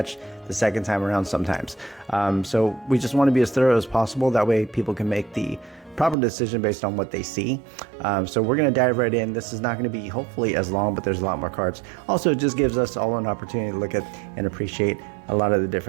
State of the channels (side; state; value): left; drops out; at 6.2 s